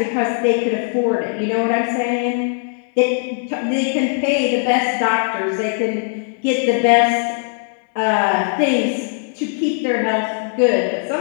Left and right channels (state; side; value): silent; right; 62 dB below the other